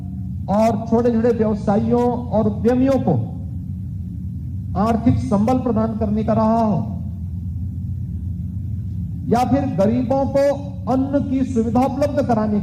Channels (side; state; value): both; identical; correlation 1.00